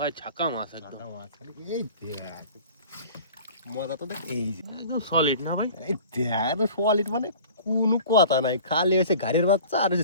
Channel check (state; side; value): inverted; both; correlation -0.43